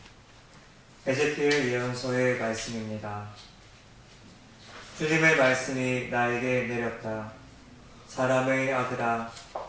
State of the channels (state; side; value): identical; both; correlation 1.00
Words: 에제키엘 예언서의 말씀입니다. 주님의 말씀이 나에게 내렸다. 사람의 아들아,